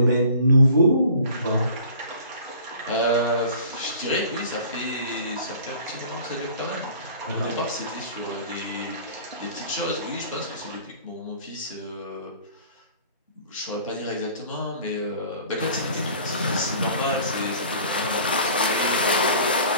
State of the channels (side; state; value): both; inverted; correlation -0.47